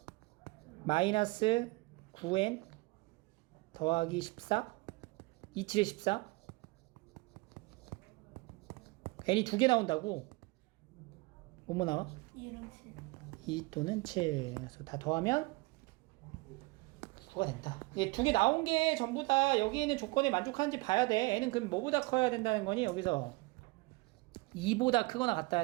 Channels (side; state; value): left; quieter; 24.3 dB